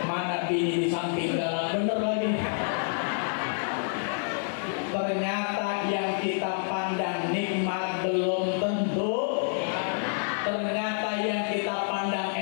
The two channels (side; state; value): right; silent; 56 dB below the other